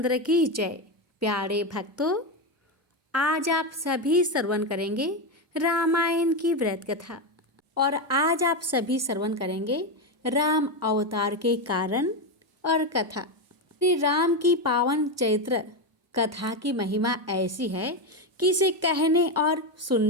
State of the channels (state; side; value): normal; both; correlation 0.11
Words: की जय। प्यारे भक्तों, आज आप सभी श्रवण करेंगे रामायण की व्रत कथा और आज आप सभी श्रवण करेंगे राम अवतार के कारण और कथा। श्री राम की पावन चैत्र कथा की महिमा ऐसी है कि इसे कहने और